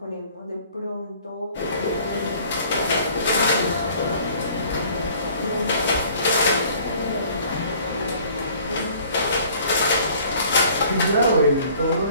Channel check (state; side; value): inverted; both; correlation -0.54